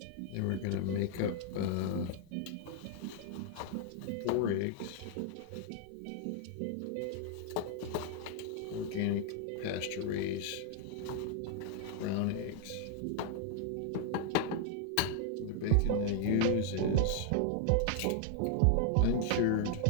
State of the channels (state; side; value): different; both; correlation 0.00